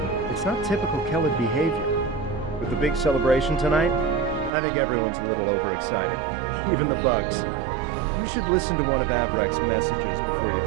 It's not typical Kellid behavior. With the big celebration tonight, I think everyone's a little overexcited. Even the bugs. You should listen to one of Avrak's messages before you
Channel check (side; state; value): left; drops out; at 4.5 s